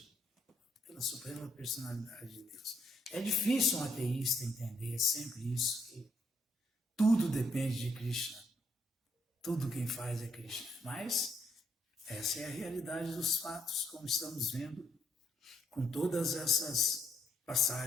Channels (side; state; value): both; normal; correlation 0.73